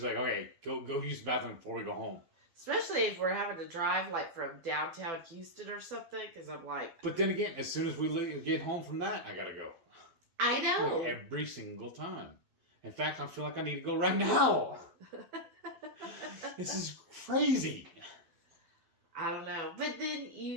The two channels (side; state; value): left; late; 12 ms